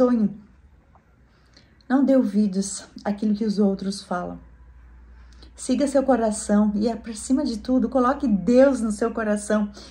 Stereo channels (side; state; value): both; identical; correlation 1.00